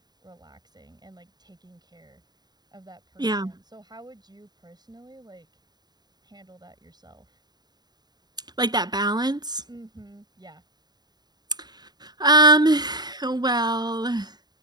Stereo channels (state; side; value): late; left; 0.20 ms